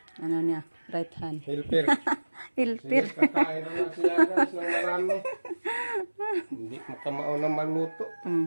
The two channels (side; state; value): both; inverted; correlation -1.00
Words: right hand. Hilper. Hilper. Sige, kakain na siya guys ng marami. Hindi makamao na maluto.